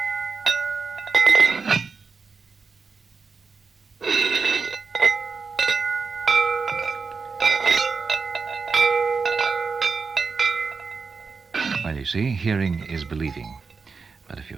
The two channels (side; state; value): left; quieter; 4.9 dB